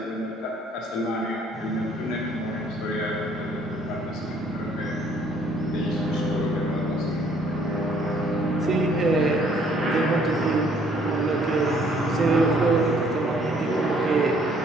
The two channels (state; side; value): normal; both; correlation 0.62